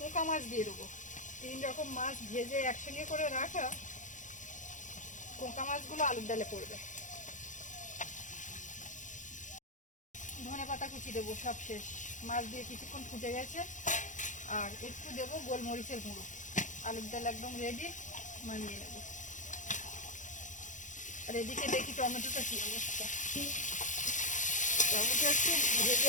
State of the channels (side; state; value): right; late; 0.36 ms